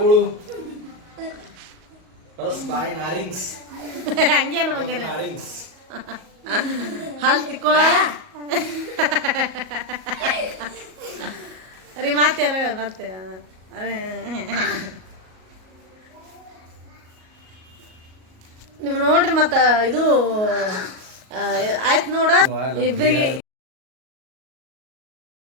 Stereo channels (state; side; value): late; left; 38 ms